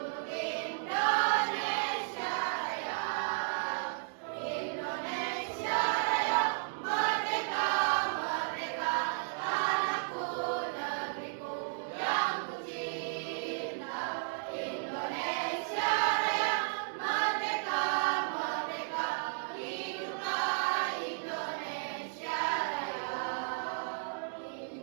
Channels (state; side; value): silent; left; digital silence